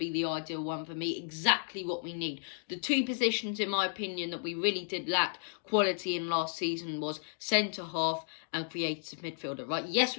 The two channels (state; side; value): silent; right; digital silence